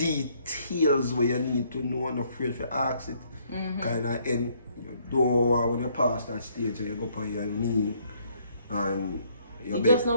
where you need to know and afraid to ask it. Kind of end. You don't want when you pass that stage and you go on your knee and it just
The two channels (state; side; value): inverted; both; correlation -0.67